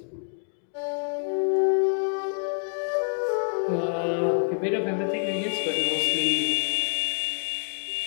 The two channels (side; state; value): right; silent; 57 dB below the other